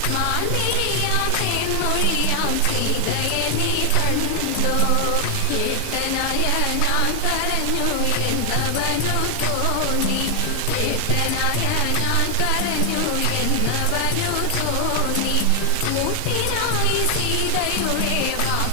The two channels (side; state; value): both; different; correlation 0.00